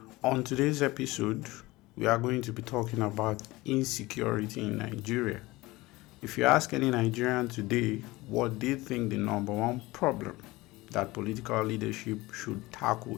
On today's episode, we are going to be talking about insecurity in Nigeria. If you ask any Nigerian today what they think the number one problem that political leadership should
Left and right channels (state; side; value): quieter; right; 20.4 dB